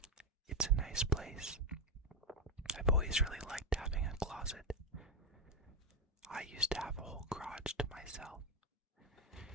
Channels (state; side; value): normal; both; correlation 0.09